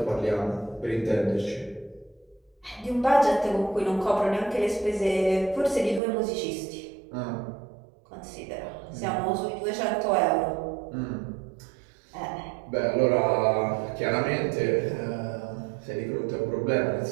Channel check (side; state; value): left; drops out; at 6.0 s